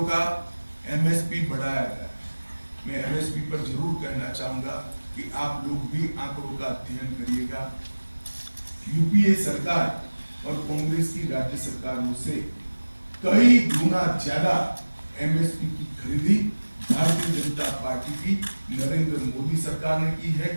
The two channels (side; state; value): both; inverted; correlation -1.00